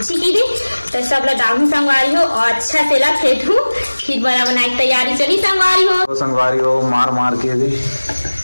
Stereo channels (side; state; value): both; inverted; correlation -1.00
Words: की दी। तो सब लोग डालू संगवारी हो और अच्छा से ला फेंटू फिर बड़ा बनाने की तैयारी चली संगवारी हो। संगवारी हो मार मार के दी